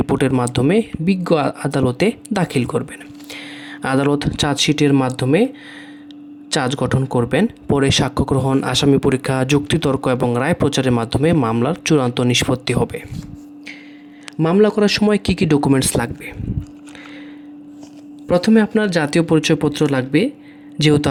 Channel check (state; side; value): identical; both; correlation 1.00